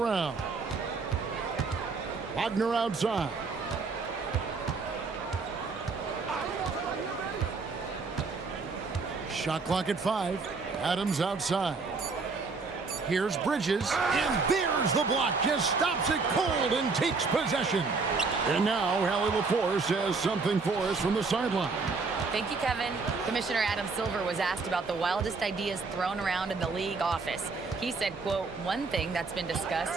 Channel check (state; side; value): quieter; left; 4.3 dB